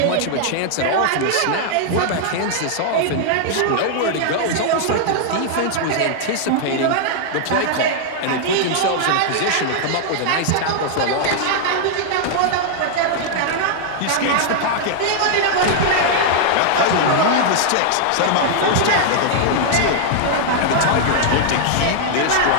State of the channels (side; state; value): both; different; correlation -0.01